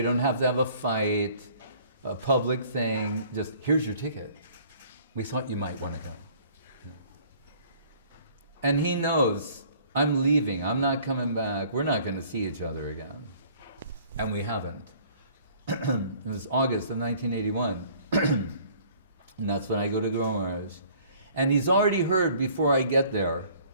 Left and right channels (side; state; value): both; inverted; correlation -0.55